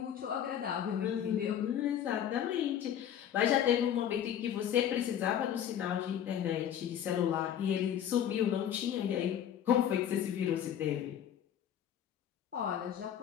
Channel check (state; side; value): quieter; right; 9.8 dB